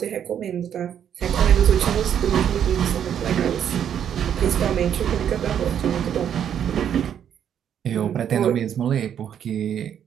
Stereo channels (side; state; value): left; quieter; 9.1 dB